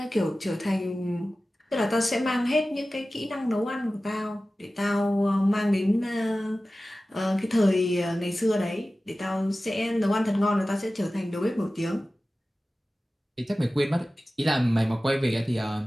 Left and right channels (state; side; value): normal; both; correlation 0.96